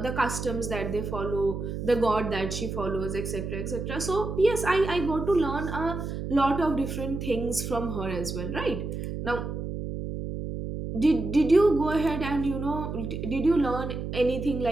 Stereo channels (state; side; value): noise; right; hum, 5 dB below the sound